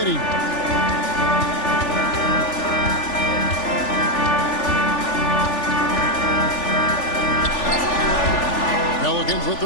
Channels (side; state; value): right; late; 3.4 ms